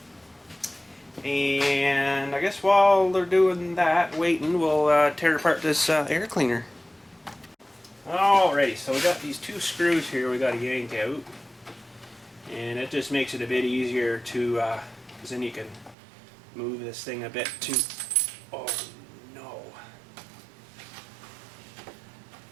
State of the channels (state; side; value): drops out; left; at 16.0 s